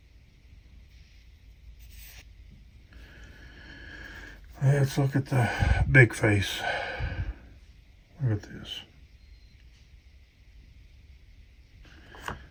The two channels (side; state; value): both; identical; correlation 1.00